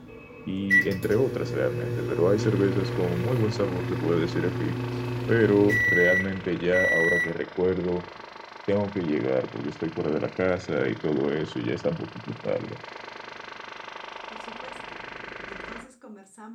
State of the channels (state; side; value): identical; both; correlation 1.00